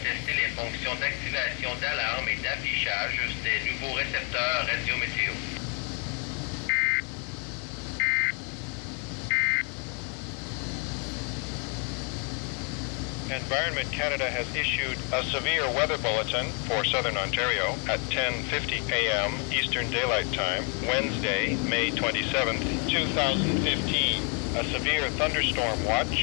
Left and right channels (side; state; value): right; quieter; 38.0 dB